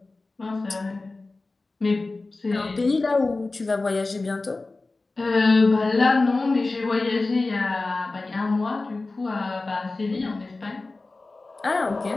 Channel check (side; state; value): right; quieter; 3.4 dB